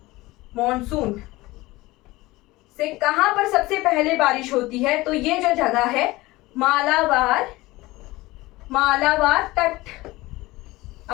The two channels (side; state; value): right; quieter; 19.9 dB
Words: मॉनसून से कहां पर सबसे पहले बारिश होती है, तो ये जो जगह है मालाबार तट।